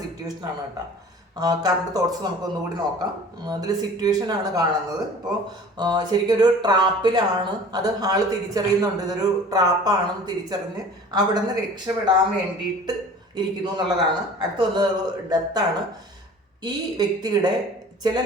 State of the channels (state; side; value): normal; both; correlation 0.44